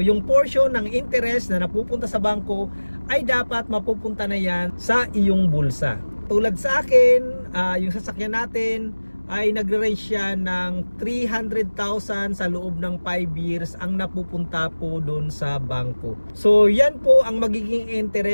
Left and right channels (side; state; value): both; inverted; correlation -1.00